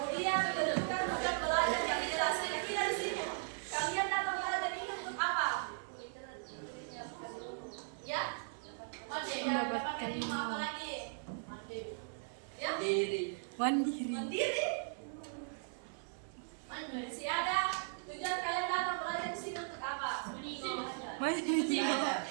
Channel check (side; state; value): left; silent; 53 dB below the other